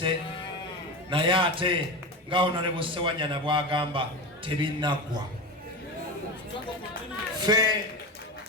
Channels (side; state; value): both; normal; correlation 0.23